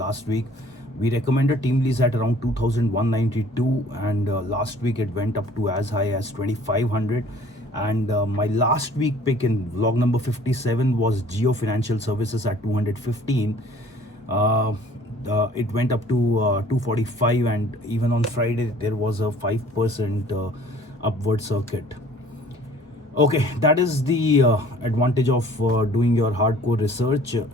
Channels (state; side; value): normal; both; correlation 0.53